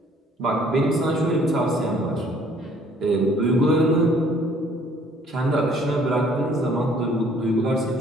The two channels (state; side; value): normal; both; correlation 0.59